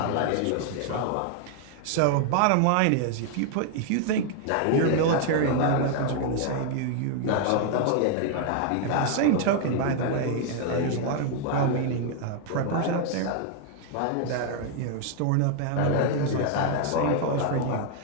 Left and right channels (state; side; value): different; both; correlation 0.00